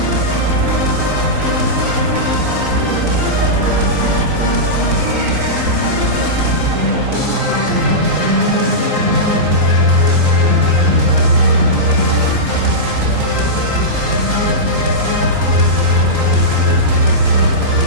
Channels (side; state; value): left; late; 3.9 ms